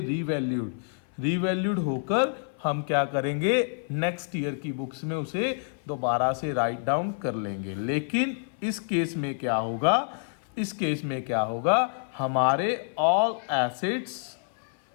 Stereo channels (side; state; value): right; silent; 57 dB below the other